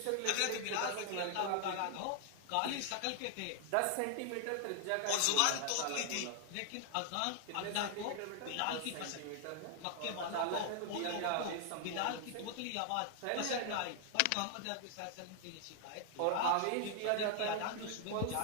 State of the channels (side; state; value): both; different; correlation 0.00